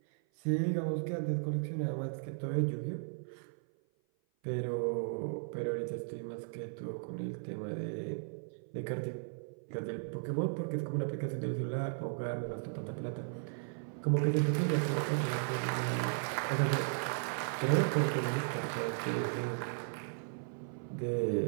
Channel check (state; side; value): silent; left; 54 dB below the other